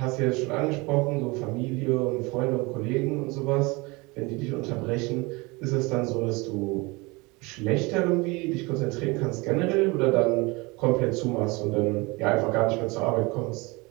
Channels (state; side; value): quieter; left; 25.2 dB